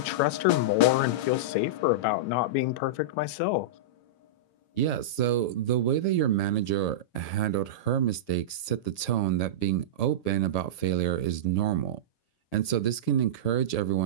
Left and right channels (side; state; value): right; late; 8.3 ms